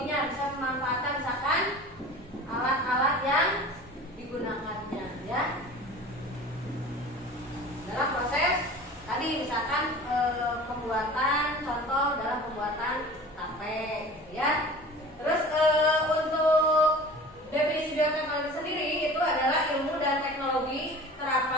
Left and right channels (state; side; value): normal; both; correlation 0.40